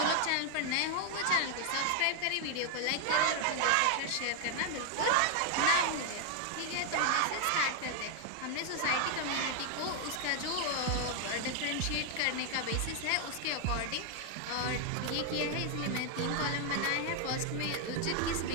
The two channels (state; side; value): different; both; correlation 0.00